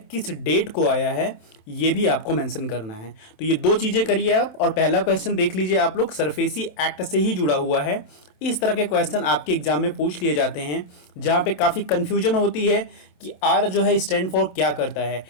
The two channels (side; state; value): right; late; 27 ms